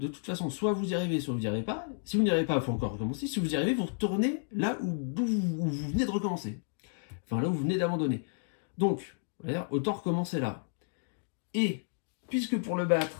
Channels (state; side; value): silent; right; digital silence